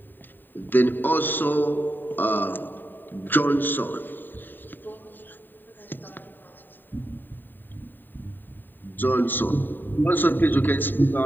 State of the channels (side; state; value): right; late; 0.092 ms